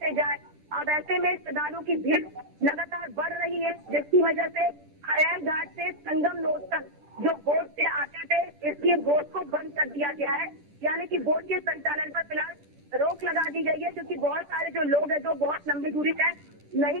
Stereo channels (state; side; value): late; left; 10 ms